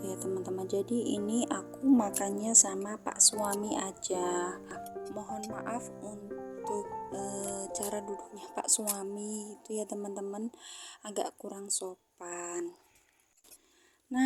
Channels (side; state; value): both; identical; correlation 1.00